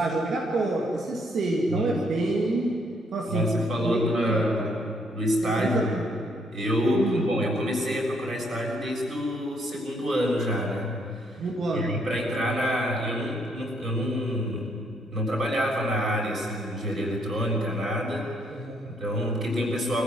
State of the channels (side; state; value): both; normal; correlation 0.71